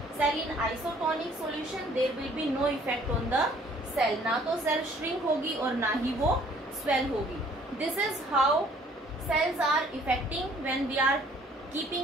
cell in isotonic solution there will be no effect on the cell. ना तो cell shrink होगी और ना ही वो स्वेल होगी। This is how cells are affecting when we are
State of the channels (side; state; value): both; normal; correlation 0.58